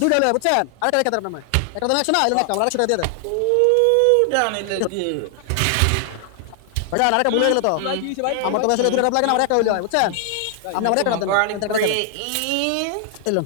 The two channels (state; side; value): different; both; correlation 0.00